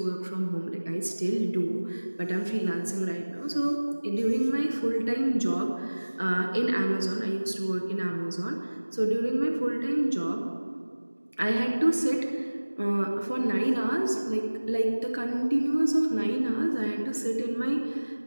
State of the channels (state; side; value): inverted; both; correlation -1.00